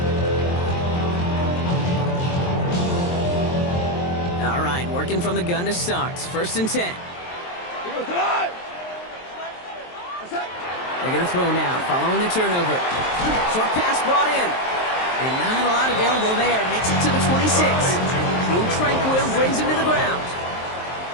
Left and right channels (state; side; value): late; right; 23 ms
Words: All right, working from the gun to start. First and 10. They're going to throw now, following the turnover. Short pass brought in. And not a lot available there. Makes it to the 26. Drew Tranquill brings him to the ground.